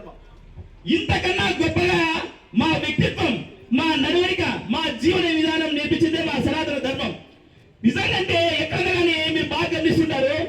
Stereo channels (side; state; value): both; identical; correlation 1.00